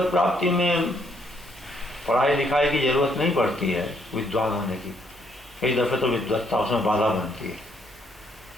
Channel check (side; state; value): both; normal; correlation 0.70